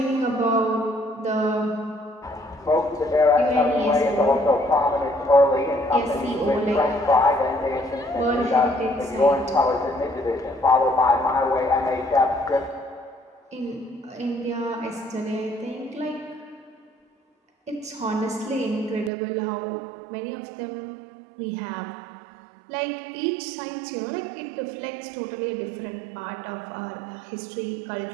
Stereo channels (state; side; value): drops out; left; at 19.1 s